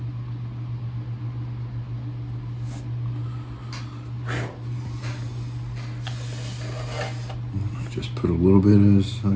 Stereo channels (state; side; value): identical; both; correlation 1.00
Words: just put a little bit as